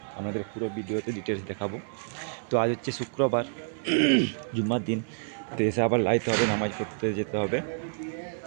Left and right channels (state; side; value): silent; left; 59 dB below the other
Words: আপনাদের পুরো ভিডিওতে ডিটেলস দেখাবো। তো আজ হচ্ছে শুক্রবার, জুম্মার দিন। তো এসে আবার লাইতে হবে, নামাজ পড়তে যেতে হবে।